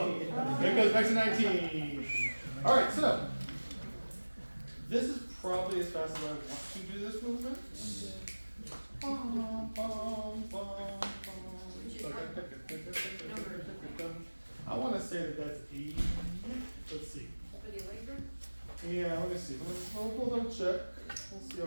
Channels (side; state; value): both; inverted; correlation -1.00